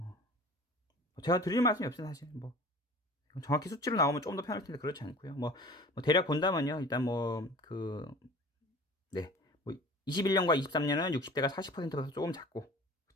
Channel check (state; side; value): normal; both; correlation 0.43